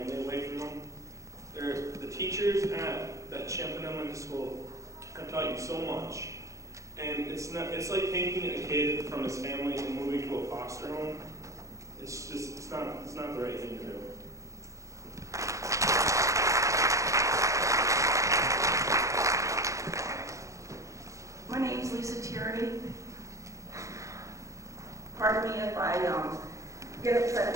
away from them. The teachers at that Champlain Elementary School have taught you so much, and it's like taking a kid from his family and moving to a foster home. It's not the right thing to do. My name's Lisa Tierney. Pardon me if I get upset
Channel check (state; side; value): late; left; 0.15 ms